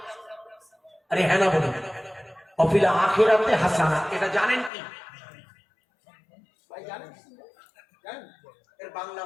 আরে হ্যাঁ না বলুন, ওয়া ফিল আখিরাতে হাসানা। এটা জানেন কি ভাই? জানেন? এর বাংলা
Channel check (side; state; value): right; drops out; at 4.7 s